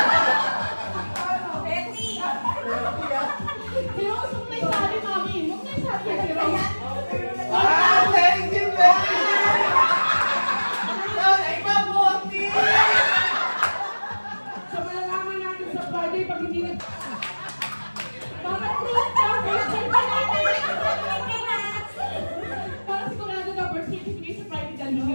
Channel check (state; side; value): inverted; both; correlation -1.00